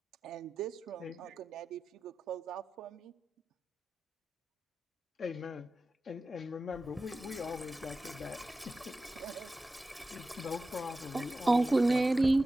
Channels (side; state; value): both; normal; correlation 0.94